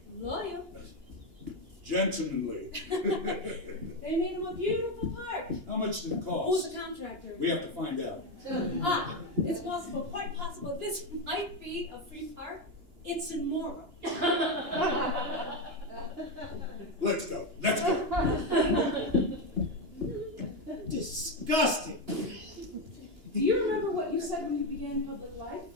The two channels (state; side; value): late; left; 2.9 ms